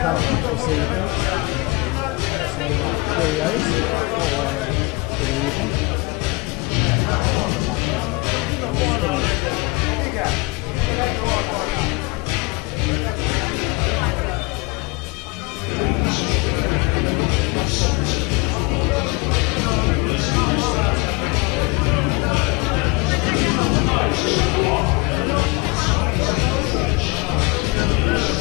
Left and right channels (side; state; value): right; quieter; 26.4 dB